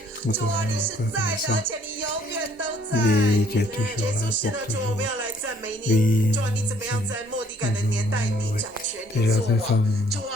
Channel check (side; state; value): both; normal; correlation 0.62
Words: 主啊，你是在的，而且你永远都在。耶稣是的，主，我们要来赞美你。主啊，你怎么样在末底改的年代，你掌权，你作王。主